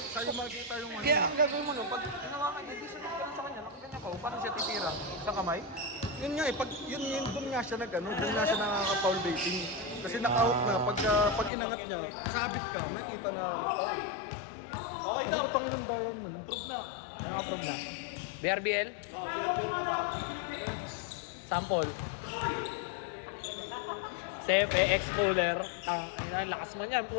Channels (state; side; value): drops out; right; at 11.5 s